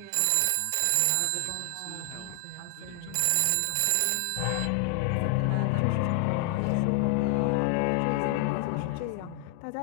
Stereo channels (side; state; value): both; different; correlation 0.00